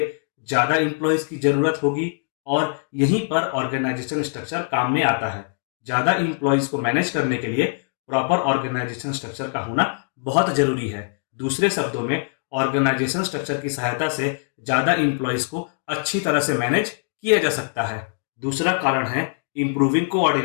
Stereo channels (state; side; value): silent; right; 64 dB below the other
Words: ज़्यादा एम्प्लॉयज़ की ज़रूरत होगी और यहीं पर ऑर्गेनाइजेशन स्ट्रक्चर काम में आता है। ज़्यादा एम्प्लॉयज़ को मैनेज करने के लिए प्रॉपर ऑर्गेनाइजेशन स्ट्रक्चर का होना बहुत ज़रूरी है। दूसरे शब्दों में ऑर्गेनाइजेशन स्ट्रक्चर की सहायता से ज़्यादा एम्प्लॉयज़ को अच्छी तरह से मैनेज किया जा सकता है। दूसरा कारण है इम्प्रूविंग